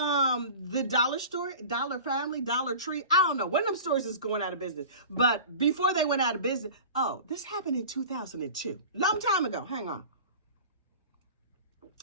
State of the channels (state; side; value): inverted; both; correlation -0.38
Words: dollar store, Dollar Family, Dollar Tree, I don't know. One of them stores is going out of business. But before they went out of business, this happened in 2002. Long time ago. Hang on.